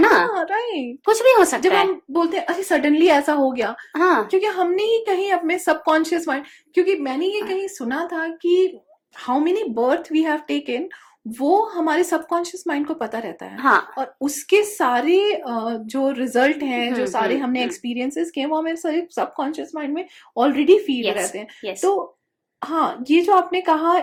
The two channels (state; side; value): identical; both; correlation 1.00